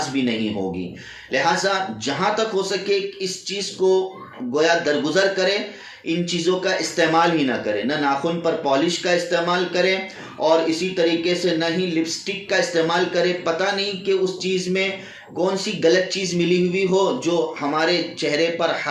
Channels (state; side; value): identical; both; correlation 1.00